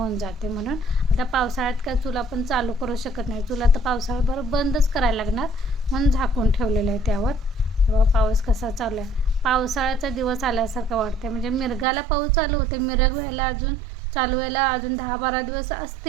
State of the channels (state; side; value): drops out; left; at 11.9 s